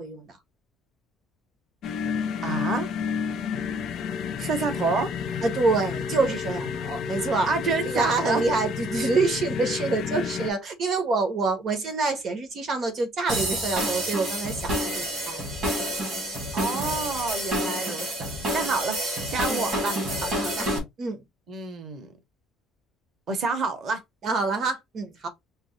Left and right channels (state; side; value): normal; both; correlation 0.60